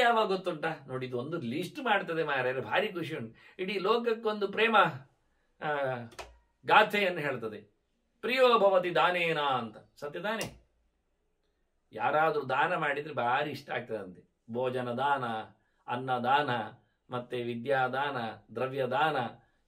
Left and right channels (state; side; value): identical; both; correlation 1.00